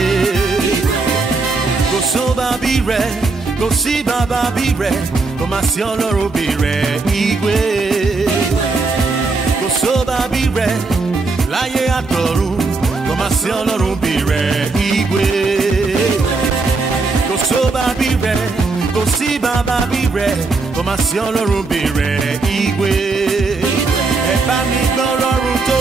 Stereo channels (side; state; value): left; quieter; 3.9 dB